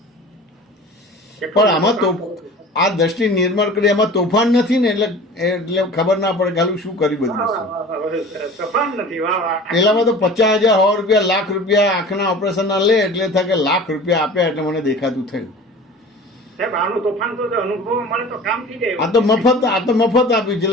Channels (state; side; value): normal; both; correlation 0.40